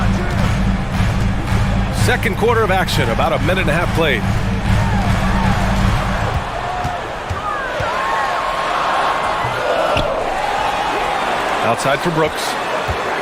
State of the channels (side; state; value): both; identical; correlation 1.00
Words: Second quarter of action, about a minute and a half played. Outside for Brooks.